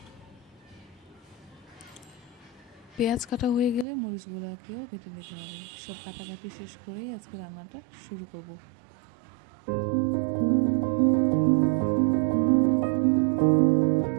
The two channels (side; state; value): left; drops out; at 3.9 s